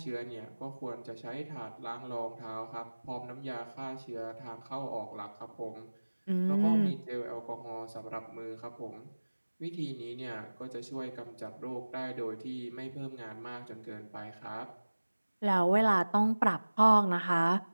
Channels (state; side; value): inverted; both; correlation -1.00